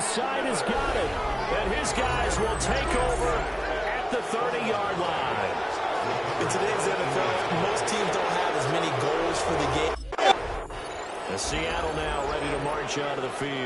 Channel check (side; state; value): both; identical; correlation 1.00